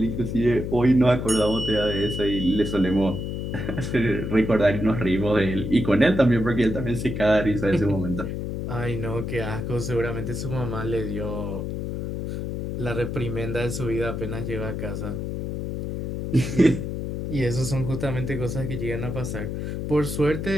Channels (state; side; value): noise; left; hum, 4 dB below the sound